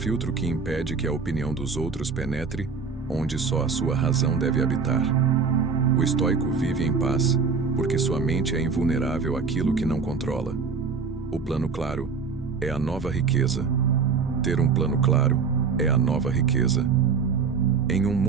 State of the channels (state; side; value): quieter; left; 5.3 dB